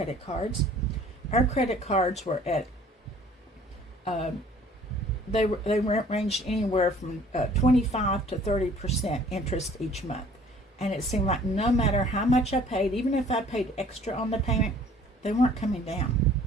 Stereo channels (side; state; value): both; normal; correlation 0.54